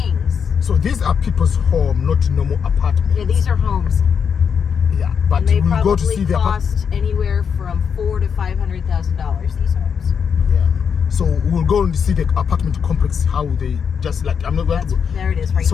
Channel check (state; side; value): quieter; right; 6.8 dB